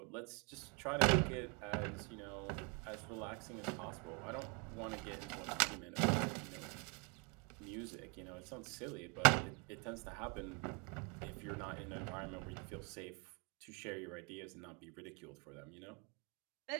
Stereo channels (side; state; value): left; quieter; 33.2 dB